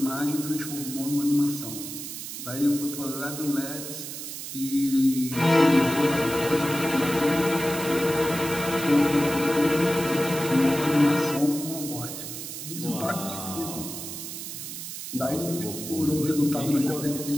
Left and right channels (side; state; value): right; noise; hiss, 8 dB below the sound